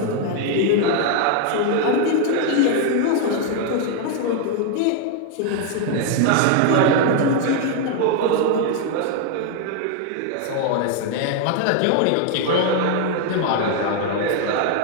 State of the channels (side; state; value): both; different; correlation 0.01